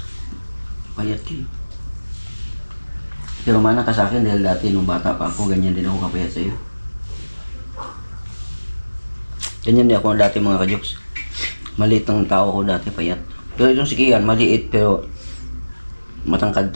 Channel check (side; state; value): both; inverted; correlation -1.00